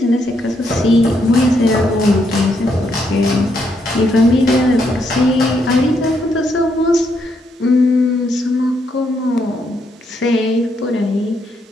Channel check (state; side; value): normal; both; correlation 0.76